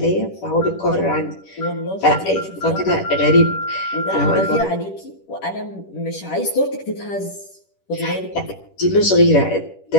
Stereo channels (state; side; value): late; right; 10 ms